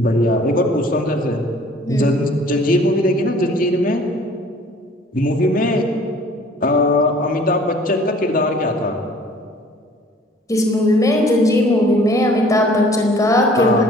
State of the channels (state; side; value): normal; both; correlation 0.53